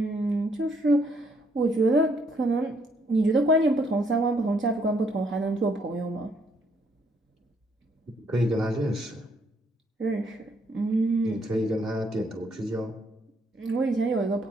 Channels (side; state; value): both; normal; correlation 0.70